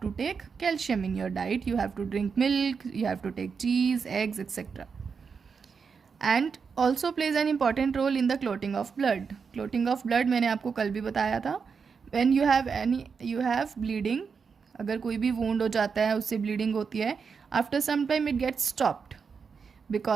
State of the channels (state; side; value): quieter; left; 5.7 dB